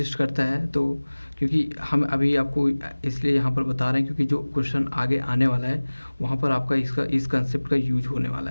करता है, तो क्योंकि हम अभी आपको इसलिए यहाँ पर बता रहे हैं क्योंकि जो क्वेश्चन आगे आने वाला है वहाँ पर आपका इस कंसेप्ट का यूज होने वाला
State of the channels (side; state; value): both; inverted; correlation -1.00